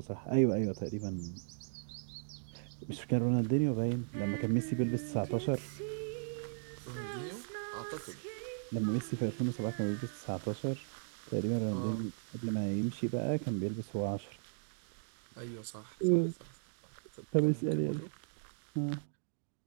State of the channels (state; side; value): silent; left; digital silence